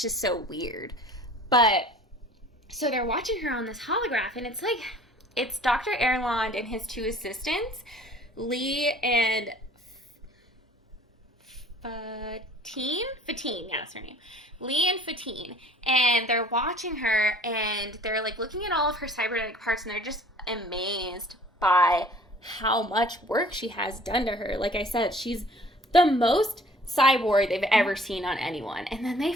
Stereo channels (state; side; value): normal; both; correlation 0.51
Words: just so weird. But, so they're watching her on this holograph, and it's, like, it's Dr. Erland and his two assistants, Lee and Fatine, yeah, that's her name. Lee and Fatine. And they're watching her, and they're, like, looking at all of her cybernetic parts, and they're just amazed by how much work she has done to her. Like I said, she's the most cyborg they've ever seen on anyone. And then they